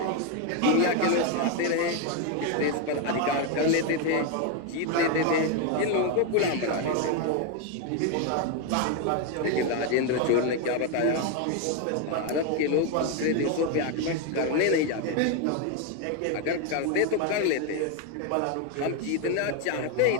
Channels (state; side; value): different; both; correlation 0.01